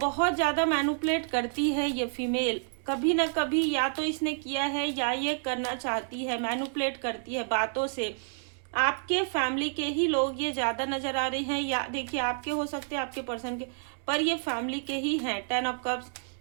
ज्यादा मैनिपुलेट करती है। ये फीमेल कभी ना कभी या तो इसने किया है या ये करना चाहती है, मैनिपुलेट करती है बातों से। आपके फैमिली के ही लोग ये ज्यादा नजर आ रहे हैं, या देखिए आपके हो सकते हैं, आपके पर्सन के, पर ये फैमिली के ही हैं। 10 ऑफ कप्स,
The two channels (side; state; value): left; silent; digital silence